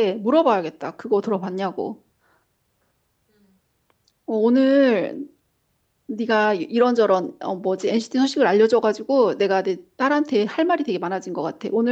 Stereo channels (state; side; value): identical; both; correlation 1.00